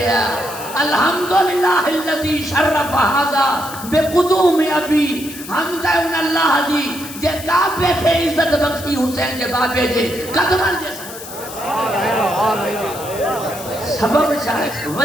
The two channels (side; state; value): left; noise; hiss, 13 dB below the sound